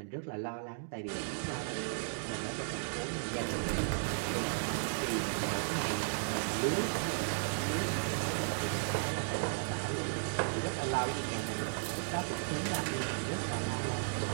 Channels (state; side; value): silent; left; digital silence